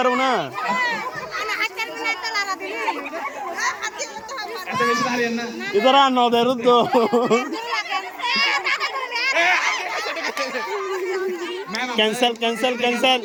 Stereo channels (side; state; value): both; identical; correlation 1.00